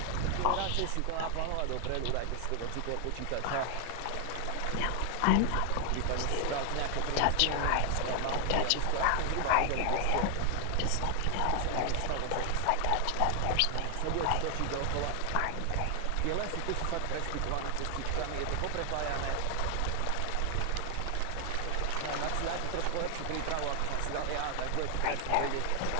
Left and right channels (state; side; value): different; both; correlation 0.00